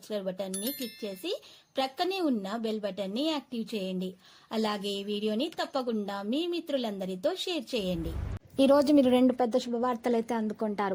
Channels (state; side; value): identical; both; correlation 1.00